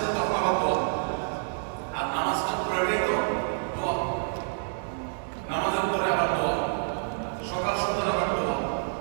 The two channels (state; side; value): silent; left; digital silence